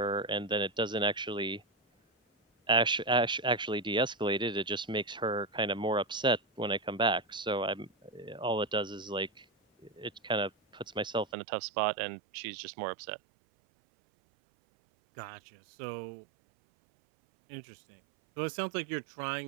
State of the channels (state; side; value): drops out; left; at 11.2 s